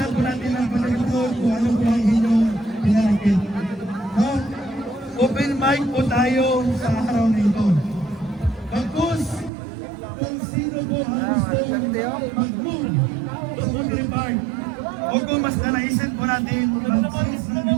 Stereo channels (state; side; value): drops out; left; at 9.5 s